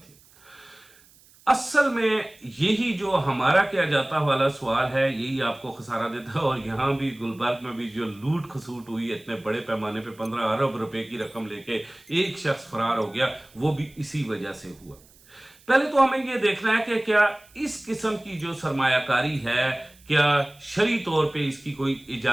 असल में यही जो हमारा क्या जाता वाला सवाल है यही आपको खसारा देता है। और यहां भी गुलबर्ग में भी जो लूट खसूट हुई इतने बड़े पैमाने पे 15 अरब रुपए की रकम लेके एक शख्स फरार हो गया, वो भी इसी वजह से हुआ। पहले तो हमें यह देखना है कि क्या इस किस्म की जो सरमायाकारी है क्या शरई तौर पे इसकी कोई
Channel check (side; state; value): right; noise; hiss, 27 dB below the sound